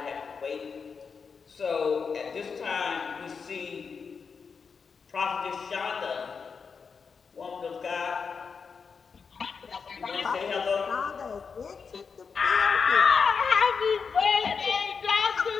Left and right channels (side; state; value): right; quieter; 5.6 dB